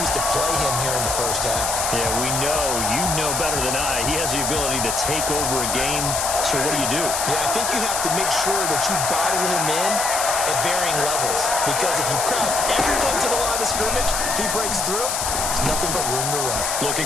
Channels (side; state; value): left; noise; hiss, 1 dB below the sound